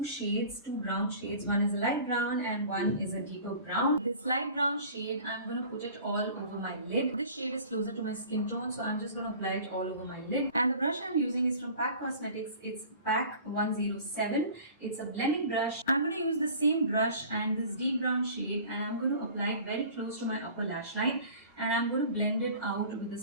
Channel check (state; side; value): inverted; both; correlation -0.44